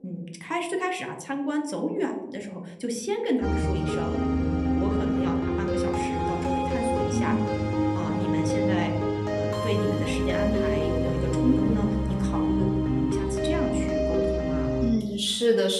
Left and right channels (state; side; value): identical; both; correlation 1.00